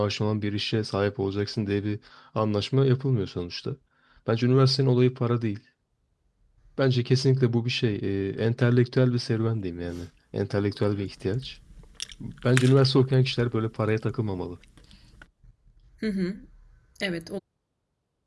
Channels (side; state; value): both; identical; correlation 1.00